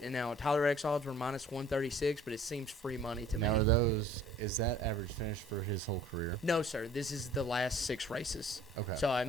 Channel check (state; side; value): normal; both; correlation 0.51